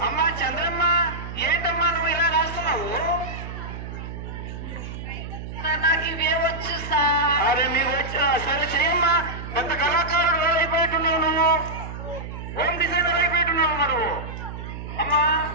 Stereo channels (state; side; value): noise; right; hum, 9 dB below the sound